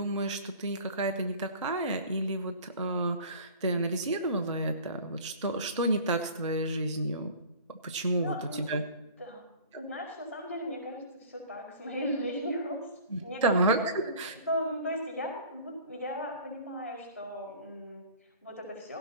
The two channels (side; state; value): both; inverted; correlation -0.44